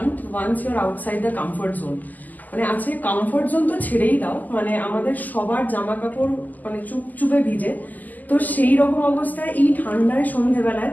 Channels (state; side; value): late; right; 0.082 ms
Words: once you are outside the comfort zone. মানে আজকে কমফর্ট জোন তো ছেড়েই দাও, মানে আমাদের সবার জামা কাপড় মানে চুপচুপে ভিজে। তো সেই রকম অবস্থায় এই ঠান্ডায় সন্ধ্যেবেলায়